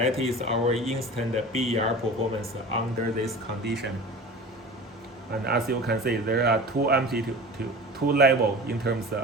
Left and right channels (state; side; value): normal; both; correlation 0.36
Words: is our instant BER performance under this condition. And as you can see, there are two levels in terms